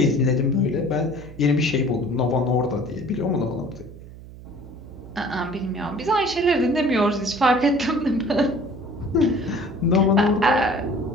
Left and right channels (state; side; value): noise; right; hum, 17 dB below the sound